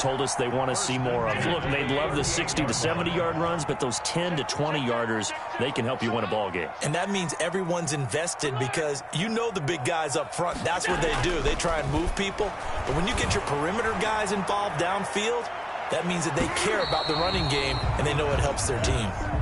us they want to see more of. Look, they love the 60 to 70-yard runs, but those 10 to 20-yarders, they can help you win a ball game. And that means everyone's invested because you know the big guys up front. That's what they do. They try and move people. But when you get your perimeter guys involved downfield, that means that they care about the running game, and they know it helps their team.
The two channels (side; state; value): both; identical; correlation 1.00